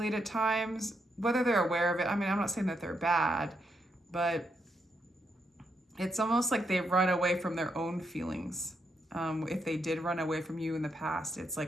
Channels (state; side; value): normal; both; correlation 0.80